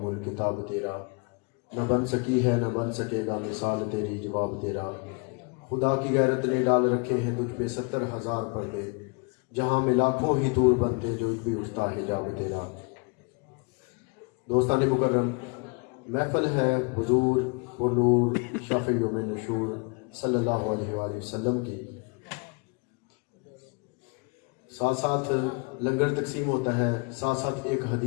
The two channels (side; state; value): right; quieter; 32.5 dB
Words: کتاب تیرا، نہ بن سکی ہے نہ بن سکے گا مثال تیری جواب تیرا۔ خدا کی غیرت نے ڈال رکھے ہیں تجھ پہ 70,000 پردے، جہاں میں لاکھوں ہی دور بنتے جو بھی اٹھتا ہے حجاب تیرا۔ دوستان مکرم، محفل ہے حضور و نور شفیع یوم نشور صلی اللہ علیہ وآلہ وسلم کی، ساتھ ساتھ لنگر تقسیم ہوتا ہے، ساتھ ساتھ ایک